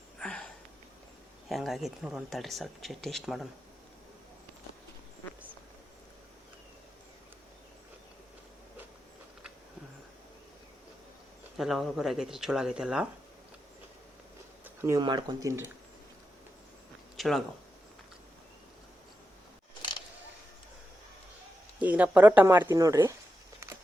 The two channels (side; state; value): both; normal; correlation 0.88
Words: ಹೆಂಗಾಗೈತೆ ನೋಡೋಣ ತಡ್ರಿ, ಸ್ವಲ್ಪ ಟೇಸ್ಟ್ ಮಾಡೋಣ. ಎಲ್ಲ ಹೊರಗಡೆ ಆಗೈತ್ರಿ, ಚಲೋ ಆಗೈತೆಲ್ಲ. ನೀವು ಮಾಡ್ಕೊಂಡು ತಿನ್ನಿರಿ, ಚಲೋ ಆಗವು. ಈಗ ನಾ ಪರೋಟ ಮಾಡ್ತೀನಿ ನೋಡ್ರಿ,